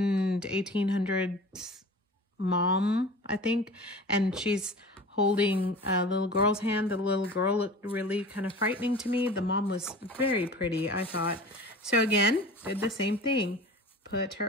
1800s mom, I think, and she's holding a little girl's hand. The little girl looked really kind of frightening to me. The mom was very pretty, I thought. So again, did the same thing. Put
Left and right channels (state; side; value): normal; both; correlation 0.38